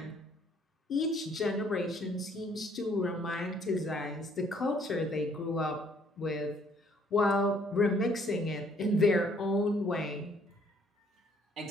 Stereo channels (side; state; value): both; normal; correlation 0.63